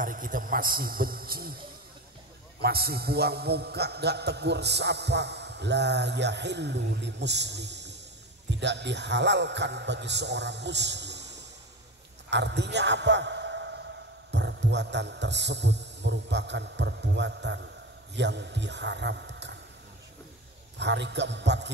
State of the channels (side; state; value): both; normal; correlation 0.24